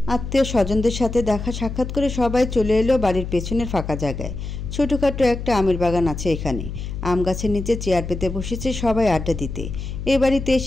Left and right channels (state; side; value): noise; left; hum, 7 dB below the sound